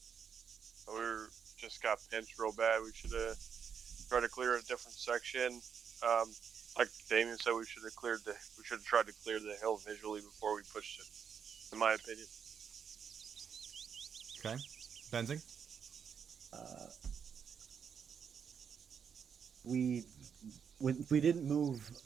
We just got pinched real bad. We should have tried to clear a different section. Like Damien said, we should have tried to clear the hill visually before we pushed it, in my opinion. Okay. Benzing? We didn't move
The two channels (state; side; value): quieter; left; 7.2 dB